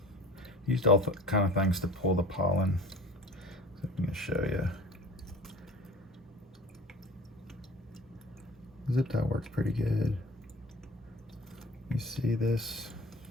Used all kind of things to pull the pollen. So I'm gonna show you. Zip tie works pretty good. You see this?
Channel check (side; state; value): both; normal; correlation 0.42